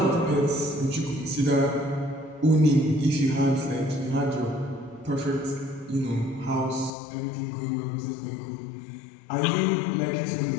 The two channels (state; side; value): drops out; right; at 6.9 s